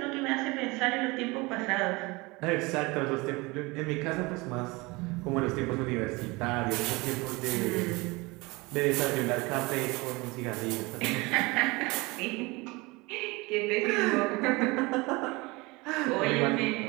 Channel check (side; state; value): left; quieter; 24.3 dB